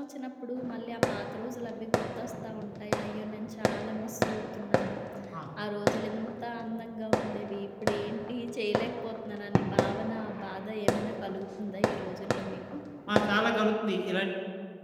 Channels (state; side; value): identical; both; correlation 1.00